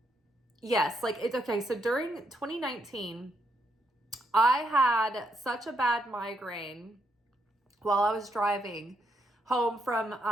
yes, like it's okay. So during 2019, I had such a bad migraine while I was driving home from,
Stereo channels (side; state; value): both; normal; correlation 0.77